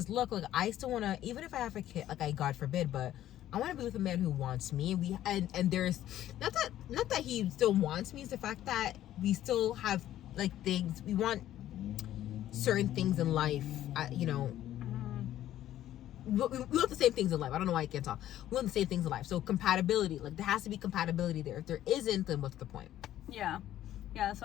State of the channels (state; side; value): quieter; right; 12.7 dB